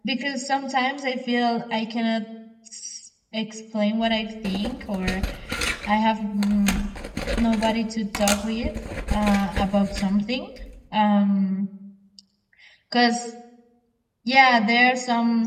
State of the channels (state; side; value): identical; both; correlation 1.00